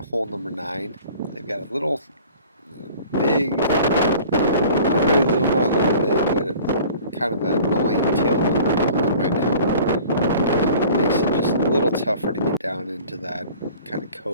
hole number 9. They've got a little big, not really little, not a little big, but kind of an annoying tailwind going on right now. Makes it just a little tougher to get down into that kind of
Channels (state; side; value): inverted; both; correlation -0.47